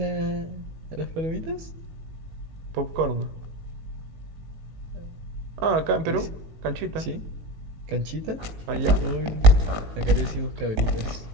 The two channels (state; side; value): late; left; 18 ms